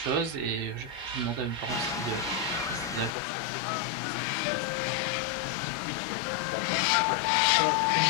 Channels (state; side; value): drops out; right; at 3.1 s